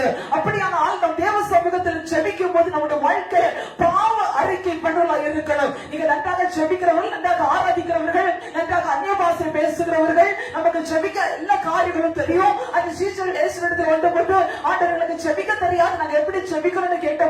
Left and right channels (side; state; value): both; identical; correlation 1.00